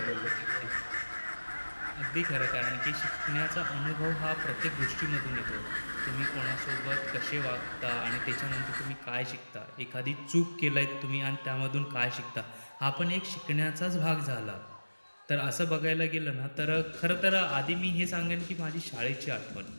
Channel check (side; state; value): both; inverted; correlation -1.00